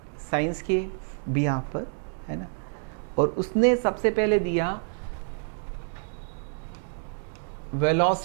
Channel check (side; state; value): left; silent; 60 dB below the other